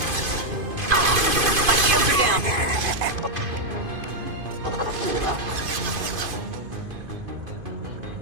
My shields are down.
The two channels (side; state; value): left; late; 2.5 ms